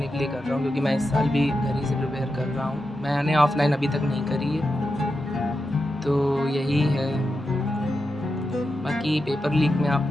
के लिए कर रहा हूँ, क्योंकि मैं इस साल भी घर ही से प्रिपेयर कर रहा हूँ, मैंने ऑफलाइन अभी तक नहीं करी है, तो यही है। बाकी पेपर लीक में आप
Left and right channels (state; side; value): normal; both; correlation 0.89